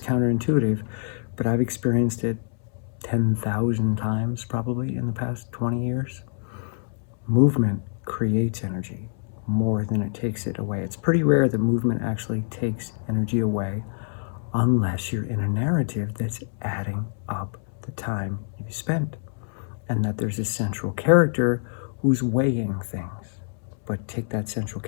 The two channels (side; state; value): right; silent; 61 dB below the other